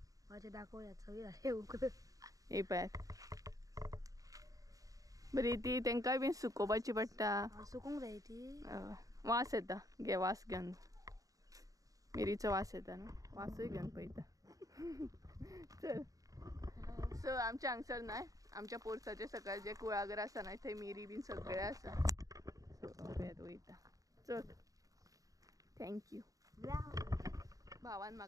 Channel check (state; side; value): late; left; 0.17 ms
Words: माझे दाखवूयात सगळी झाले उकळ. ही पॅथ बरी ती तेंकाय बी सुकोवपाची पडटा. सुकूंक जाय ती. वास येता घे वास घेवन. मिरीचो वास येता न्हू वासूय घेवन पळयता. चल सो आमच्या हांगसर नाय आमच्या पोरसाचे सकयल जे कुळागर आसा न्हय थंय मिरी बीन सगळे आसा. सो पळयत वयता. चल थँक्यू. भावान